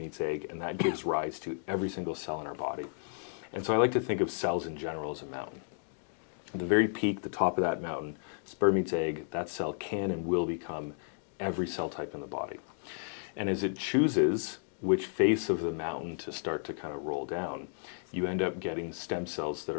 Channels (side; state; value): right; silent; digital silence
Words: egg, and that gives rise to every single cell in our body. And so I like to think of cells in general as a mountain. At the very peak, the top of that mountain, sperm meets egg, that cell can and will become every cell type in the body. And as it chooses which face of the mountain to start to kind of roll down, you end up getting stem cells that